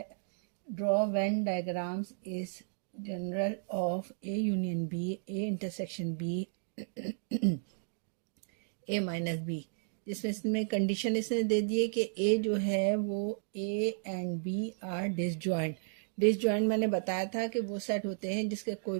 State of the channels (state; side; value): silent; left; digital silence